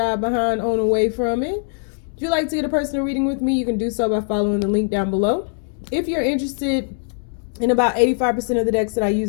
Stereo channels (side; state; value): right; silent; 64 dB below the other